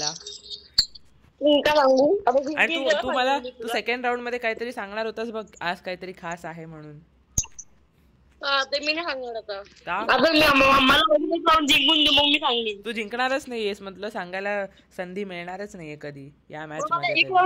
आणि तू सेकंड राऊंड मध्ये काहीतरी सांगणार होतास बघ, आज काहीतरी खास आहे म्हणून. ते मी नाही सांगणार आता. तू जिंकणारच नाहीयेस, म्हटलं सांगायला संधी मिळणारच नाहीये कधी या मॅच मध्ये.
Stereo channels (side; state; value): both; identical; correlation 1.00